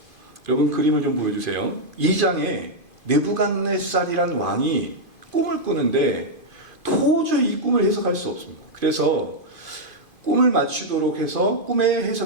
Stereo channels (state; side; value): late; left; 2.5 ms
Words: 여러분 그림을 좀 보여주세요. 2장에 느부갓네살이란 왕이 꿈을 꾸는데 도저히 이 꿈을 해석할 수 없습니다. 그래서 꿈을 맞추도록 해서 꿈의